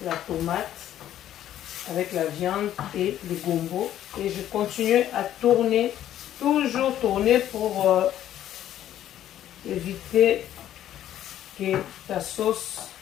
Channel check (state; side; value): quieter; right; 11.8 dB